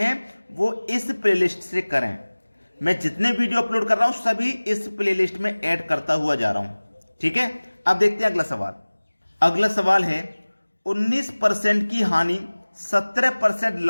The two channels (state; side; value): inverted; both; correlation -1.00